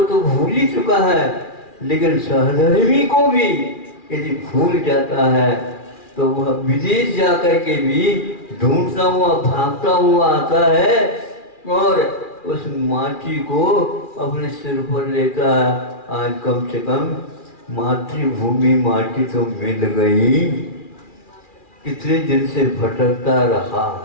तो भूल ही चुका है, लेकिन सहधर्मी को भी यदि भूल जाता है तो वह विदेश जाकर के भी ढूंढता हुआ भागता हुआ आता है और उस माटी को अपने सिर पर लेता है। आज कम से कम मातृभूमि माटी तो मिल गई, कितने दिन से भटकता रहा,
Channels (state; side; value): late; right; 2.4 ms